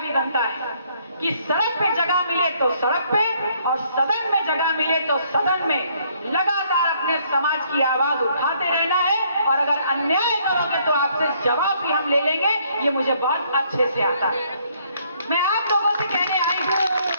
बनता है कि सड़क पे जगह मिले तो सड़क पे और सदन में जगह मिले तो सदन में लगातार अपने समाज की आवाज उठाते रहना है। और अगर अन्याय करोगे तो आपसे जवाब भी हम ले लेंगे, ये मुझे बहुत अच्छे से आता है। मैं आप लोगों से कहने आई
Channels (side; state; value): both; inverted; correlation -0.67